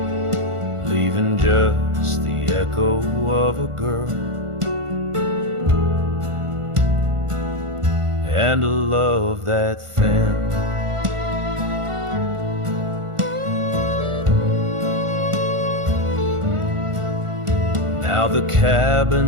leaving just the echo of a girl and a love that thin. Now the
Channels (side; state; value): left; late; 1.5 ms